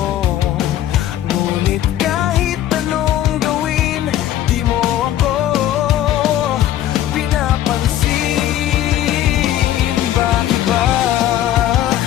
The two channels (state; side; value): quieter; right; 12.3 dB